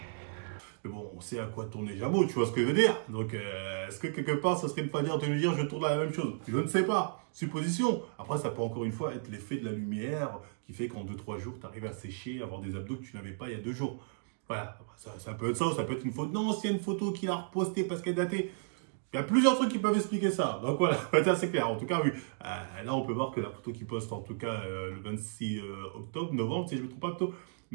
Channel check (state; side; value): silent; left; digital silence